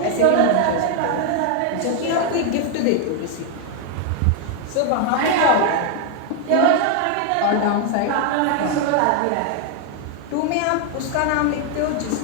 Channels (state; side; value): different; both; correlation 0.00